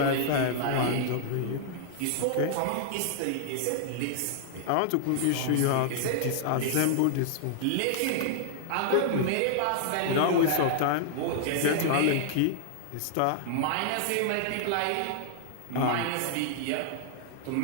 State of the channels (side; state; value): both; different; correlation -0.01